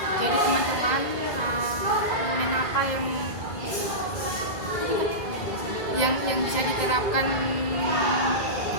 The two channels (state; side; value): late; right; 2.0 ms